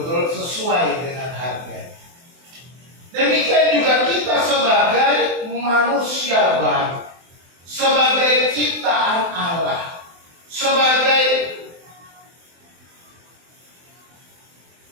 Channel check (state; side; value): late; left; 23 ms